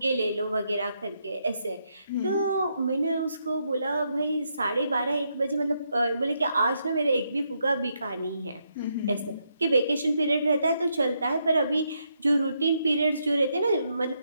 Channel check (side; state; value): both; inverted; correlation -0.79